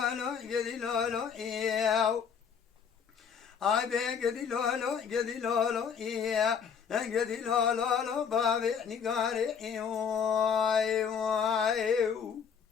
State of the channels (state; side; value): quieter; right; 6.9 dB